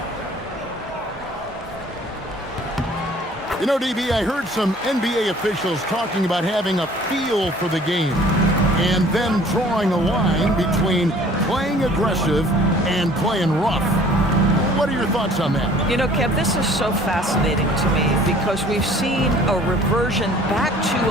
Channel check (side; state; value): both; normal; correlation 0.52